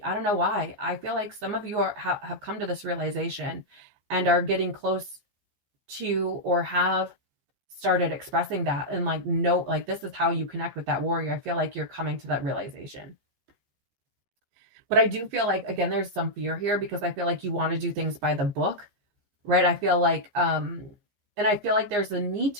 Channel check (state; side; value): late; left; 14 ms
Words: I don't know why, I feel like some of you have come to this realization and are getting close to, or have started expressing that, and like, no, like this is how you connect with that warrior. I feel like you're coming to that realization. But I do feel like, again, there's some fear here because I feel like you want to do things by the book, right? I feel like, and I feel like there's a need